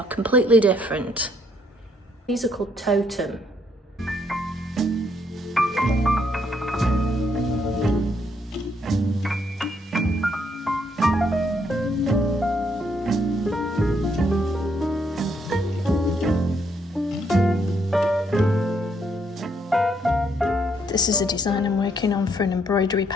completely different. These are called Totem. This is a design I'm working on for an embroidery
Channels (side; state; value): both; normal; correlation 0.72